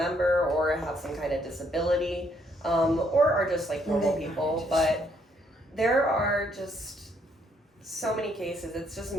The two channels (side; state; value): both; normal; correlation 0.70